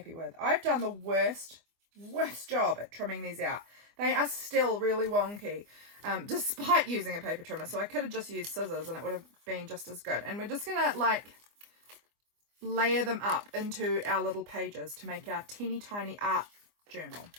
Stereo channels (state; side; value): late; left; 24 ms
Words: with. I've done the worst job at trimming these out. They are still really wonky, despite using a paper trimmer. So I could have just used scissors and it would have been just as good. And we're just going to like layer them up into our little pages to make our teeny tiny art journal.